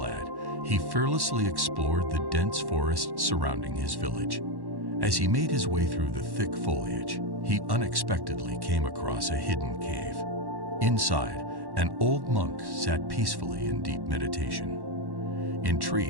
he fearlessly explored the dense forest surrounding his village. As he made his way through the thick foliage, he unexpectedly came across a hidden cave. Inside, an old monk sat peacefully in deep meditation.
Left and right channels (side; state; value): left; late; 1.1 ms